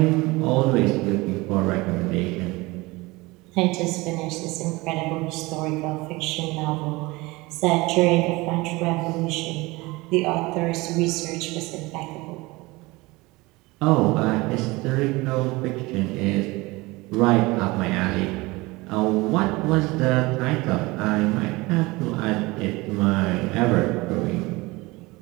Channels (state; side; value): quieter; left; 22.3 dB